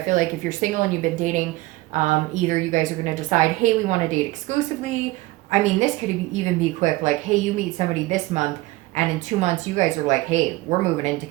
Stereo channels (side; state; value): left; quieter; 19.8 dB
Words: feel like if you're single and you've been dating, either you guys are going to decide, hey, we want to date exclusively. I mean, this could even be quick. Like, hey, you meet somebody this month, and in 2 months, you guys are like, hey, we're moving in